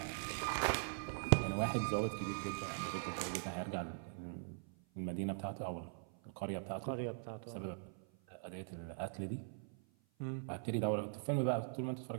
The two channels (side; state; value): left; silent; 50 dB below the other